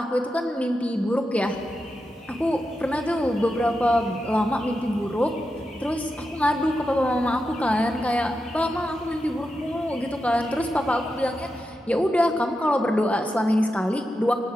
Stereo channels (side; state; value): both; normal; correlation 0.88